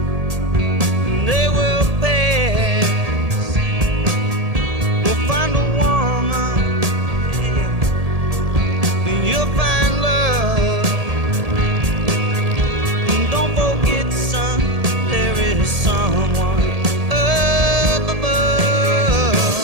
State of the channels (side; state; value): left; late; 1.7 ms